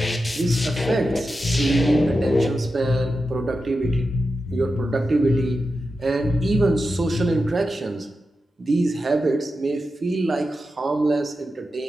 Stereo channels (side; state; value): both; normal; correlation 0.90